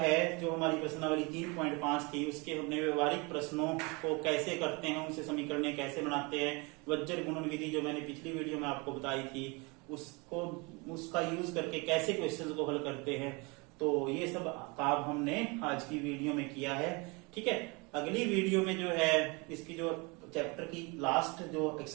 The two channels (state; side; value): quieter; left; 28.3 dB